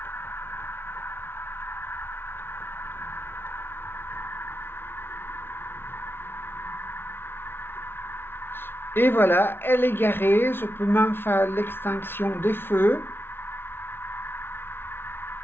Et voilà, elle est garée. Je peux même faire l'extinction des feux.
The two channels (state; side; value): late; right; 0.11 ms